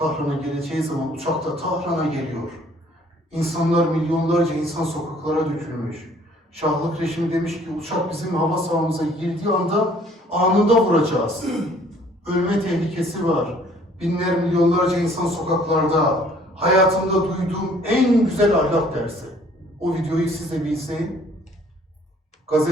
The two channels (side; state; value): both; normal; correlation 0.58